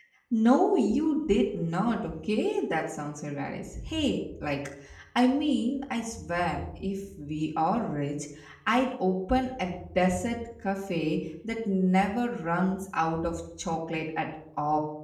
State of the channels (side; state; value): both; identical; correlation 1.00